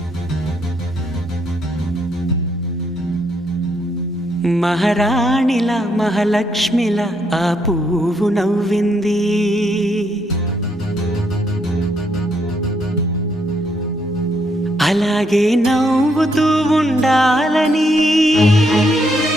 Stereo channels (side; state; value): both; normal; correlation 0.75